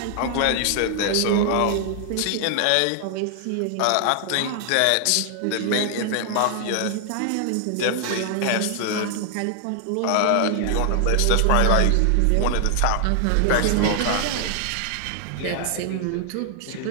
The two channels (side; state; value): both; different; correlation 0.00